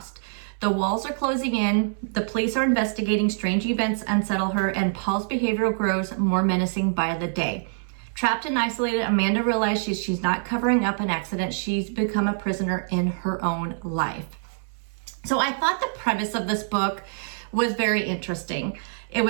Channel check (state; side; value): silent; left; 62 dB below the other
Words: The walls are closing in, the police are investigating, strange events unsettle her, and Paul's behavior grows more menacing by the day. Trapped and isolated, Amanda realizes she's not covering up an accident. She's become a prisoner in her own life. So I thought the premise of this book was very interesting. It